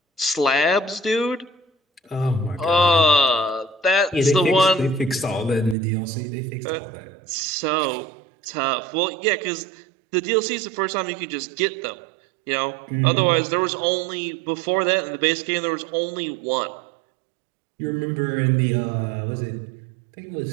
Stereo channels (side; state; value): left; drops out; at 5.8 s